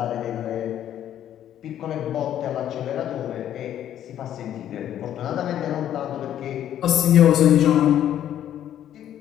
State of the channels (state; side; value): quieter; right; 11.0 dB